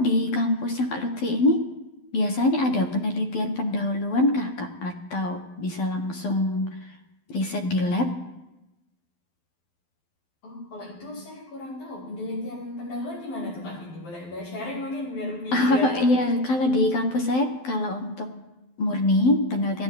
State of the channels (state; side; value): late; right; 12 ms